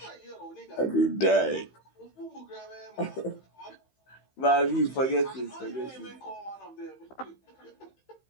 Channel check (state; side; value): late; right; 15 ms